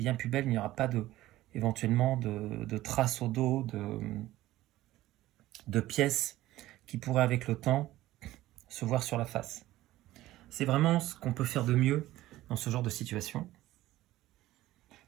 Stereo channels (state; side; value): quieter; left; 15.9 dB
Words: plus belle. Il n'y aura pas éventuellement de traces au dos, de pièces qui pourraient avec le temps se voir sur la face. C'est vraiment ce qu'on peut faire de mieux dans ce genre de situation.